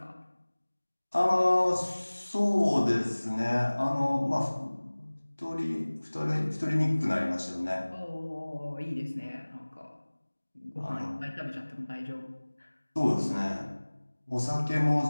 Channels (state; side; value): inverted; both; correlation -1.00